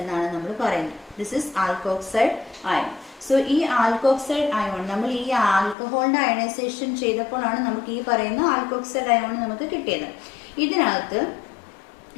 എന്നാണ് നമ്മൾ പറയുന്നത്. This is alkoxide ion. So ഈ ആൽക്കോക്സൈഡ് അയോൺ നമ്മൾ ഈ ആൽക്കഹോളിൻ്റെ അയണൈസേഷൻ ചെയ്തപ്പോഴാണ് നമുക്ക് ഈ പറയുന്ന ആൽക്കോക്സൈഡ് അയോൺ നമുക്ക് കിട്ടിയത്. ഇതിനകത്ത്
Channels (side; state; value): right; drops out; at 5.8 s